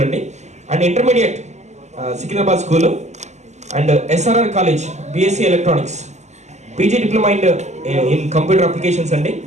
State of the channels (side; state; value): left; late; 0.33 ms